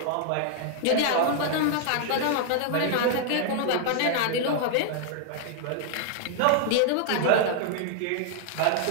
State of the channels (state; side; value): different; both; correlation 0.00